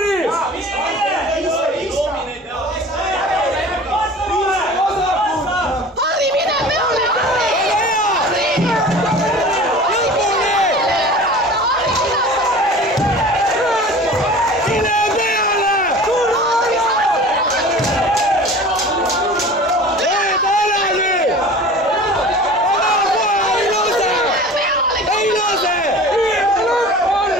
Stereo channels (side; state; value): both; normal; correlation 0.40